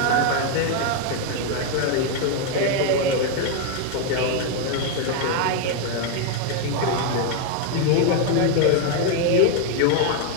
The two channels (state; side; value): different; both; correlation 0.01